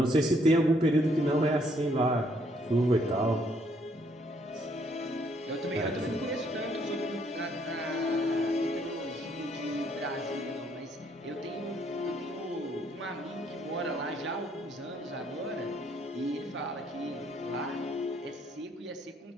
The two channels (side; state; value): both; normal; correlation 0.68